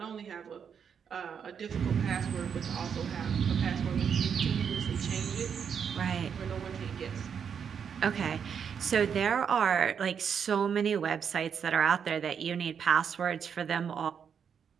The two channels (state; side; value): quieter; left; 7.3 dB